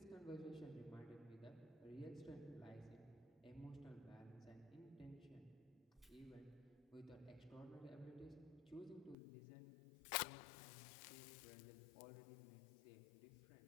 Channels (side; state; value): right; drops out; at 9.2 s